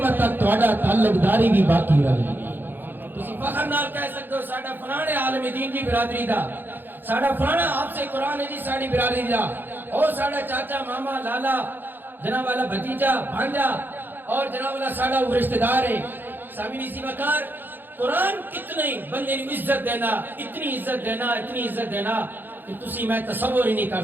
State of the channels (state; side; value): late; left; 0.093 ms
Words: تک تہاڈا تعلق داری بھی باقی رہے گی۔ تسی فخر نال کہہ سکتے ہو ساڈا فلانے عالم دین دی برادری دا، ساڈا فلانا حافظ قرآن ہے جی ساڈی برادری دا، اور ساڈا چاچا ماما لالا جناب والا بھتیجا بھانجا اور جناب والا ساڈا وہ رشتہ دار ہے۔ سامعین اسی وقار قرآن کتنی بندے نو عزت دینا، اتنی عزت دینا، اتنی عزت دینا کہ تسی میں تصور ہی نہیں کر